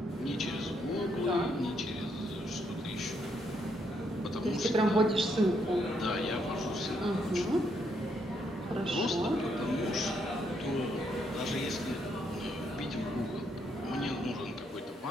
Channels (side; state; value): both; normal; correlation 0.75